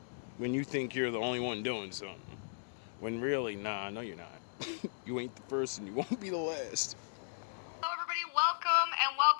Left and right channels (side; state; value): right; silent; digital silence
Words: When you think you're the only one doing something. When really, nah, no you're not. You ain't the first and you won't be the last. Hello everybody, welcome